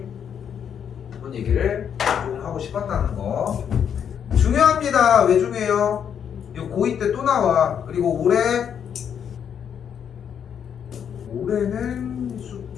그런 얘기를 좀 하고 싶었다는 거. 중요합니다. 왜 중요해요? 이거 고2 때 또 나와. 그리고 올해는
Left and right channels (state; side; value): quieter; right; 8.2 dB